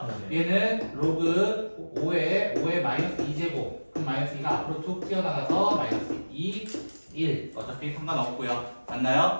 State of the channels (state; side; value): inverted; both; correlation -1.00